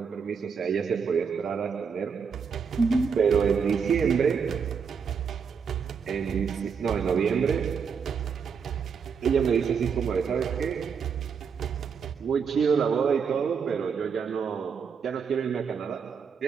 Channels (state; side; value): quieter; left; 6.3 dB